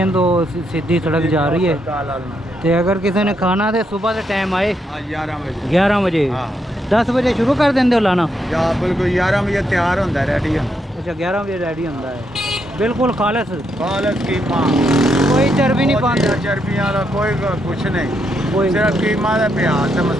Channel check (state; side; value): normal; both; correlation 0.79